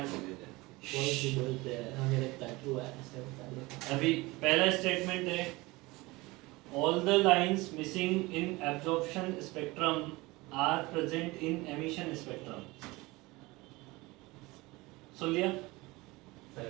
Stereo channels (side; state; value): left; quieter; 22.2 dB